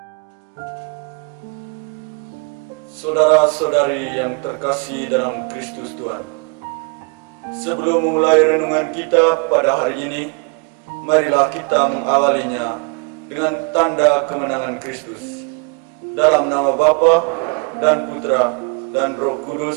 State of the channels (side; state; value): left; quieter; 32.9 dB